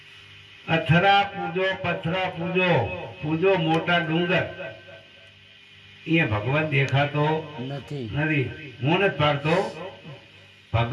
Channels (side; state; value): both; identical; correlation 1.00